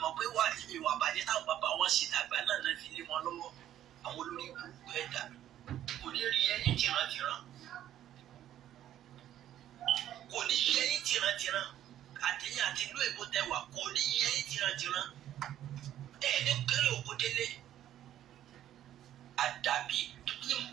mọ̀ pé wà ìwà àbájẹ́ táwọn bàbá wọn ṣe dàgbà náà náà fi lé wọn lọ́wọ́ àwọn olórí burúkú ẹ̀dá kò ní rí ẹyin tìrantìran kò ní rí ẹyin tìrantìran àtẹ̀yìn àti ìlú èbó tẹwà kò ní rí ẹyin tìrantìran ẹ̀ẹ́dẹ́ kéré òkú délé àdàbí ní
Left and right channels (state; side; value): quieter; left; 11.8 dB